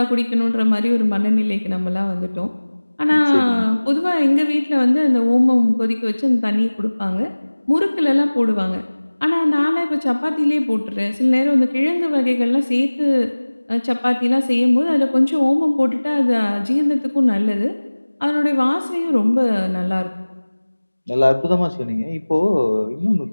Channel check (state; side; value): inverted; both; correlation -1.00